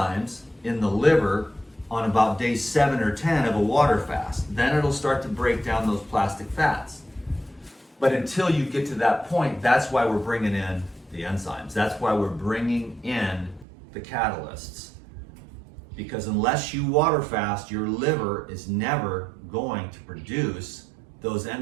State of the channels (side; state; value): left; drops out; at 13.7 s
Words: in the liver on about day 7 or 10 of a water fast. Then it'll start to break down those plastic fats. But until you get to that point, that's why we're bringing in the enzymes. That's why we're bringing in the catalysts. Because unless you water fast, your liver is never going to produce those